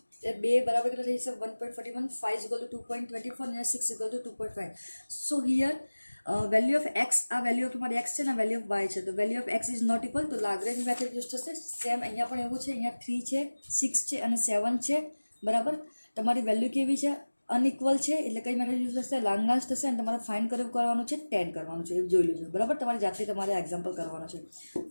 એ 2 બરાબર કેટલા થઈ જશે 1.41. 5 ઇઝ ઇક્વલ ટુ 2.24 અને 6 is equal to 2.5. So here value of x, આ વેલ્યુ ઓફ તમારી એક્સ છે ને વેલ્યુ ઓફ વાય છે. તો value of x is not equal, તો લાગ્રેન્જ મેથડ યુઝ થશે. સેમ અહીંયા પણ એવું છે. અહીંયા 3 છે 6 છે અને 7 છે, બરાબર. તમારી વેલ્યુ કેવી છે અનઇક્વલ છે એટલે કઈ મેથડ યુઝ થશે લાગ્રાન્જ થશે. અને તમારે ફાઇન્ડ કરવાનું છે 10 કરવાનું છે, એ જોઈ લેજો, બરાબર. તમારી જાતે તમારે એક્ઝામ્પલ કરવાનો છે.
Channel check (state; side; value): inverted; both; correlation -1.00